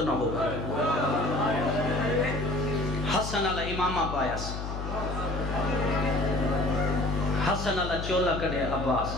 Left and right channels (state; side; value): noise; left; hum, 6 dB below the sound